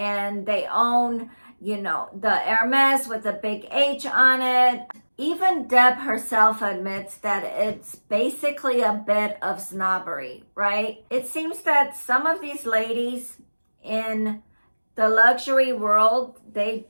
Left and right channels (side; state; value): both; inverted; correlation -1.00